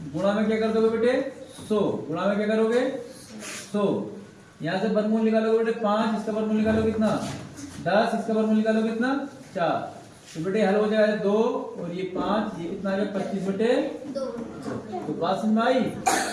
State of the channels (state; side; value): identical; both; correlation 1.00